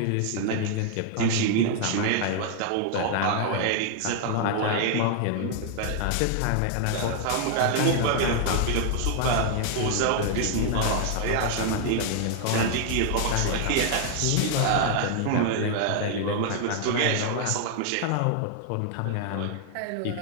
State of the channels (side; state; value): both; different; correlation 0.00